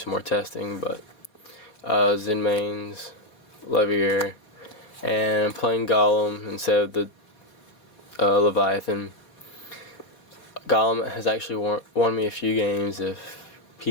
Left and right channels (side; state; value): right; late; 4.6 ms